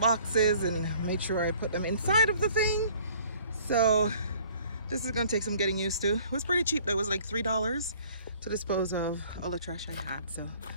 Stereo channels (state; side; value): inverted; both; correlation -0.55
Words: and made sure I put them inside of the thing. So this is gonna take some getting used to. It was pretty cheap though. It was like $3 to dispose of all the trash I had. So